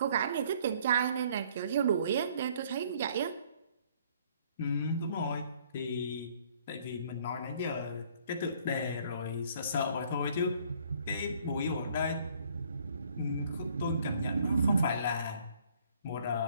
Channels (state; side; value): inverted; both; correlation -0.60